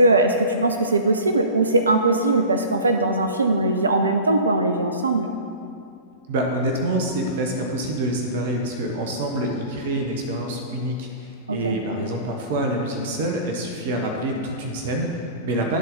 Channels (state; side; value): inverted; both; correlation -0.39